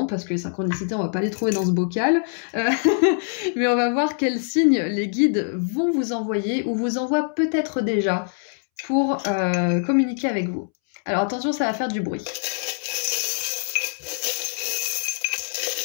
que les synchronicités, on va pas les trouver dans ce bocal, mais on va voir quel signe les guides vont vous envoyer ou vous envoient peut-être déjà pour communiquer avec vous. Alors attention, ça va faire du bruit.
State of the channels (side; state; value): right; silent; 63 dB below the other